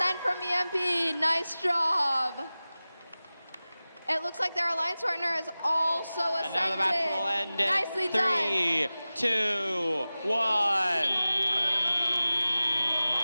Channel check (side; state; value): both; inverted; correlation -0.97